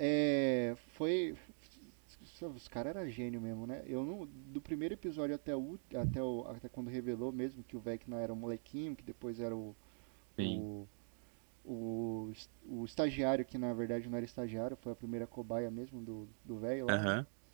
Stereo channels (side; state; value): left; silent; digital silence